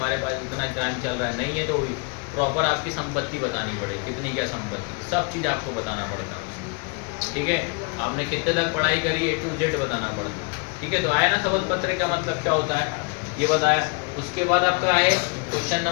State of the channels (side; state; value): right; quieter; 32.6 dB